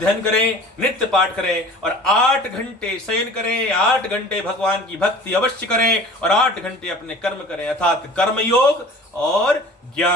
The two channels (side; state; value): both; normal; correlation 0.43